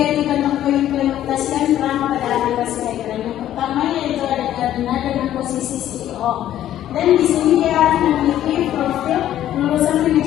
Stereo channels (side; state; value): right; quieter; 12.1 dB